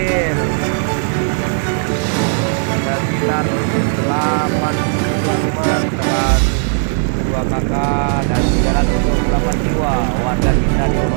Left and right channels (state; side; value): silent; left; digital silence